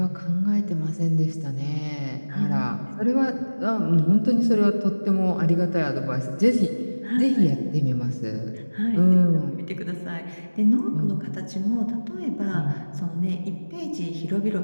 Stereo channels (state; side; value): inverted; both; correlation -1.00